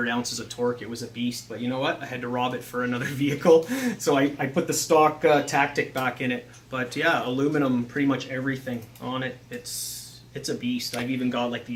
ounces of torque. It was a beast, but you know what? I had to rob it for another vehicle, so I put the stock Tactic back in it. But yeah, aluminum, pretty much everything on it. It's a beast. I've even got like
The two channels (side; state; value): both; identical; correlation 1.00